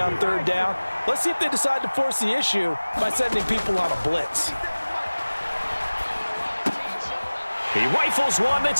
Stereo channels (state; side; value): inverted; both; correlation -1.00